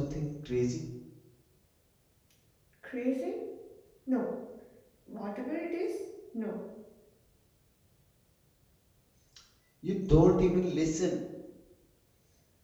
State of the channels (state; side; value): identical; both; correlation 1.00